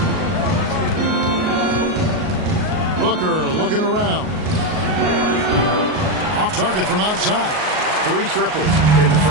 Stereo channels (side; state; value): left; late; 38 ms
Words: Booker looking around. Off target from outside. 3 triples in the